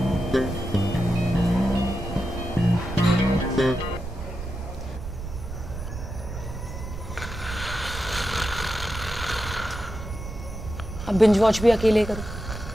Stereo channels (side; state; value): right; noise; rumble, 9 dB below the sound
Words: अब बिंज वॉच भी अकेले करो।